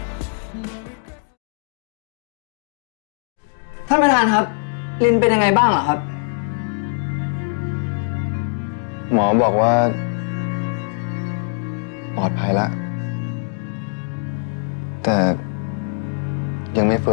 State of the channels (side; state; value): right; silent; 64 dB below the other